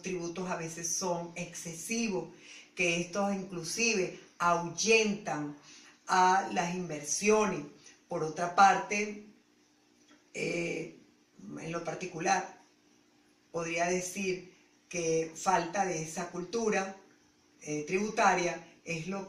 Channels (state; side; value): identical; both; correlation 1.00